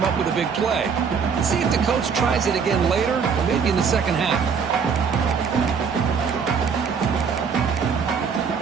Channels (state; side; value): quieter; left; 6.2 dB